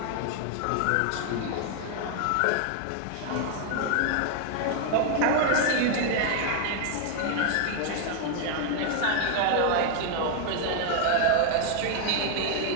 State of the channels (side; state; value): both; different; correlation 0.00